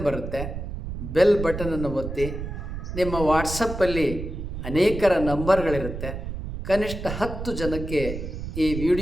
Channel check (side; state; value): right; noise; rumble, 7 dB below the sound